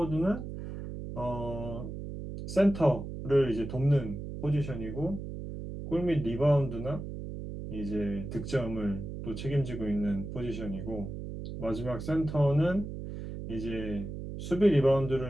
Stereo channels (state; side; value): noise; right; hum, 8 dB below the sound